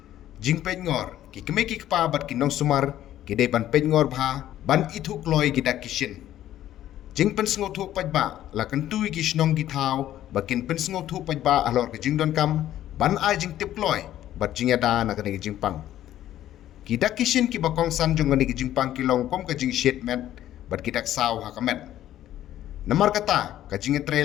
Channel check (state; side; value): quieter; right; 12.6 dB